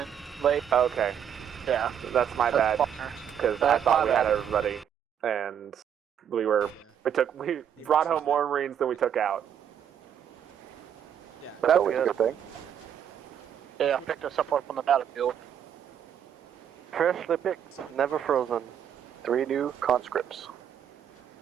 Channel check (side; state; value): left; quieter; 8.9 dB